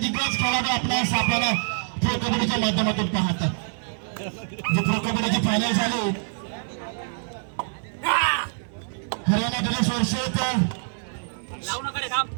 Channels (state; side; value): silent; left; digital silence